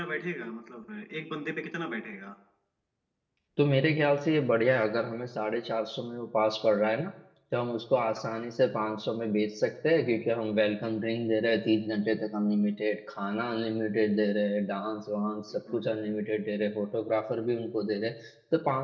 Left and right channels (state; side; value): identical; both; correlation 1.00